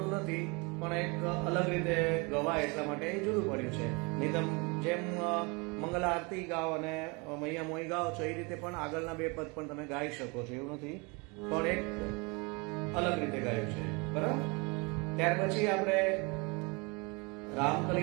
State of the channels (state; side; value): quieter; left; 29.3 dB